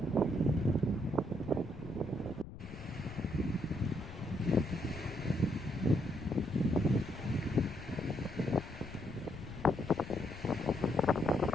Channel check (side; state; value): left; noise; rumble, 13 dB below the sound